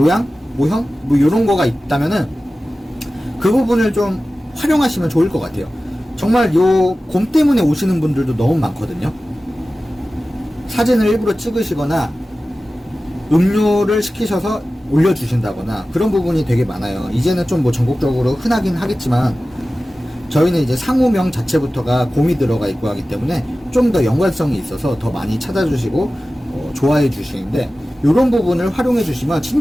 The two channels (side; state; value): both; normal; correlation 0.96